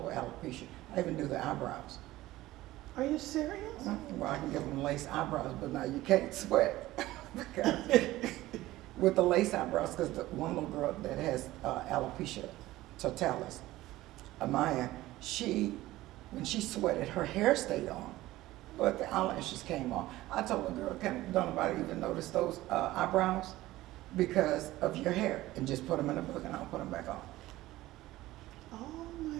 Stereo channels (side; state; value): left; quieter; 16.8 dB